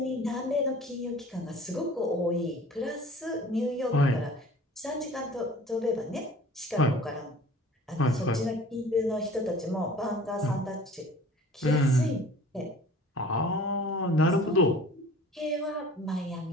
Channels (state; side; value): normal; both; correlation 0.46